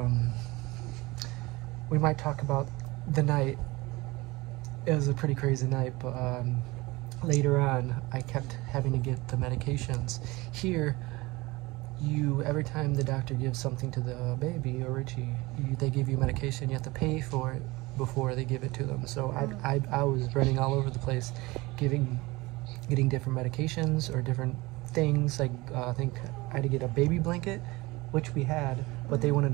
we might talk about the night. It was a pretty crazy night, but later on I kept having to get the medications. Here, every time the doctor gives something to the baby or Richie, they give you medication. You have to pay for it before they give it to them. So I was running all over the place, getting different medications or different things. Like I think I had to get a baby blanket, which we had, but they wanted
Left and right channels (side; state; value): left; quieter; 21.9 dB